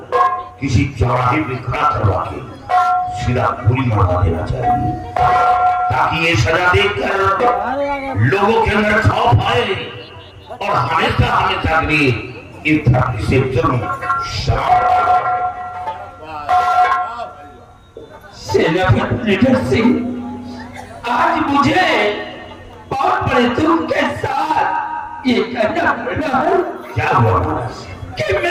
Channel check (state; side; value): identical; both; correlation 1.00